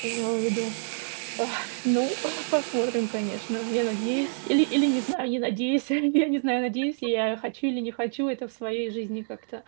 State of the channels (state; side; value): silent; left; digital silence